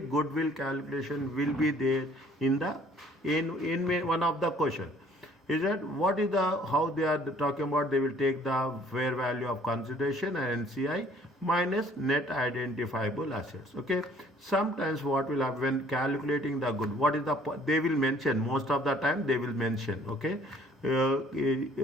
calculation will be there in the in one of the question. Is that what is the how they are talking about? They will take the fair value of consideration and NCI minus net identifiable assets. Okay. Sometimes what will happen when calculating the good, what is the they will mention most of the time they will mention. Okay.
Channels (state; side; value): normal; both; correlation 0.58